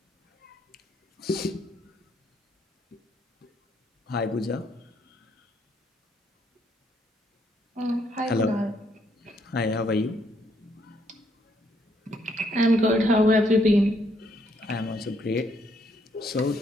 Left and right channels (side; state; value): both; normal; correlation 0.71